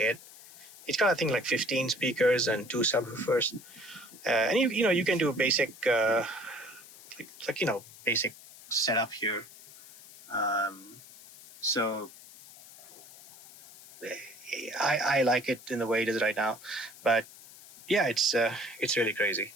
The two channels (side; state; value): left; noise; hiss, 19 dB below the sound